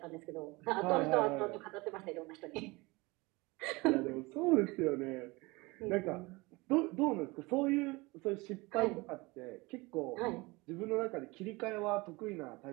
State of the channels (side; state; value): left; quieter; 23.8 dB